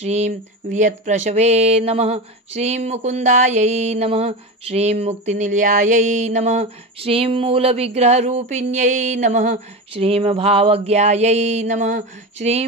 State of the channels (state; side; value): normal; both; correlation 0.22